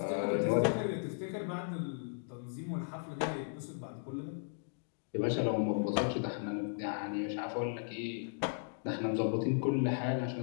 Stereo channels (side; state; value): right; silent; digital silence